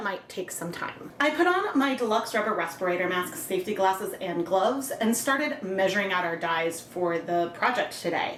might take some time. I put on my deluxe rubber respirator mask, safety glasses, and gloves, and started measuring out our dyes for the project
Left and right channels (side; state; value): both; identical; correlation 1.00